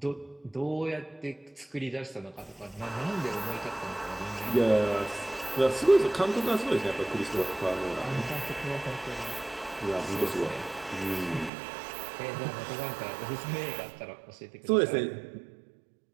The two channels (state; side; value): drops out; left; at 11.5 s